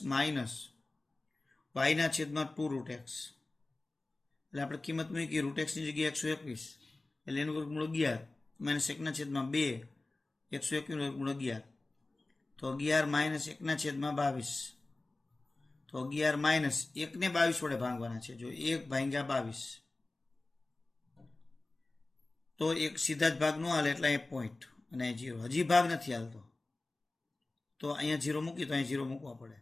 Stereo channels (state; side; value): quieter; right; 3.1 dB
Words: માઇનસ y ના છેદમાં 2√x. એટલે આપણે કિંમત મૂકી √x ની જગ્યાએ 121 એટલે એનું વર્ગમૂળ 11 માઇનસ 1 ના છેદમાં 2, 121 નું વર્ગમૂળ 11. તો 11 માઇનસ 1 ના છેદમાં 22. તો 11 માઇનસ 1 ને 22 વડે ભાંગવાના છે. જો 1/22 તો એક સીધા જ ભાગ ન હાલે એટલે અહીંયા પોઈન્ટ અને 0. હજી ભાગ નથી હાલતો તો અહીંયા 0 મૂકી, તો અહીંયા 0 મૂકવા પડે.